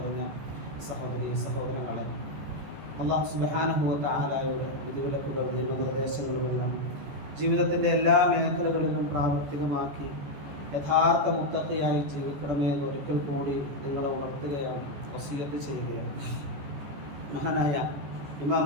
സഹോദരങ്ങളെ, അല്ലാഹു സുബ്ഹാനഹു വ തആലയുടെ വിധിവിലക്കുകൾ നിയമനിർദ്ദേശങ്ങളുമെല്ലാം ജീവിതത്തിൻ്റെ എല്ലാ മേഖലകളിലും പ്രാവർത്തികമാക്കി യഥാർത്ഥ മുത്തഖിയായി ജീവിക്കണമേ എന്ന് ഒരിക്കൽ കൂടി നിങ്ങളെ ഉണർത്തുകയാണ്, വസിയത്ത് ചെയ്യുകയാണ്. മഹാനായ ഇമാം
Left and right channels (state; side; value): late; left; 14 ms